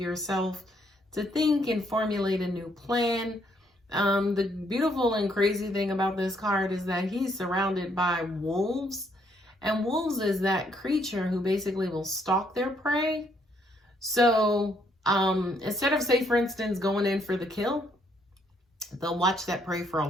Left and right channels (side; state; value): both; normal; correlation 0.70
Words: to think and formulate a new plan. The beautiful and crazy thing about this card is that he's surrounded by wolves, and wolves is that creature who basically will stalk their prey. So instead of, say, for instance, going in for the kill, they'll watch that prey for a